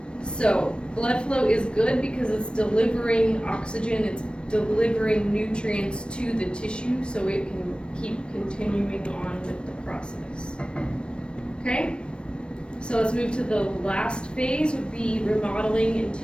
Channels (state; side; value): late; right; 0.056 ms